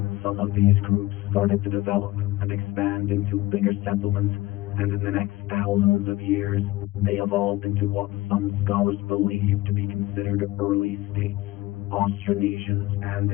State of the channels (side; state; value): right; quieter; 18.3 dB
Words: Some of these groups started to develop and expand into bigger settlements, and in the next thousands of years, they evolved into what some scholars believe to be considered early states. Austronesians